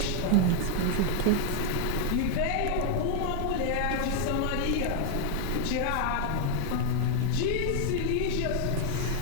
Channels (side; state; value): both; different; correlation 0.00